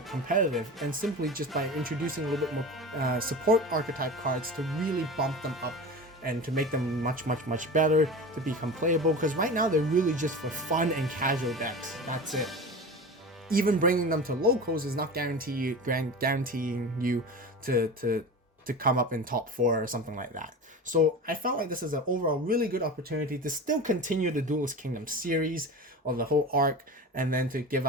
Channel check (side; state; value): both; normal; correlation 0.31